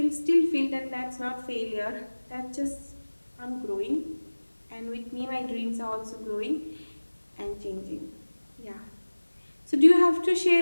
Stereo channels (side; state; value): both; inverted; correlation -1.00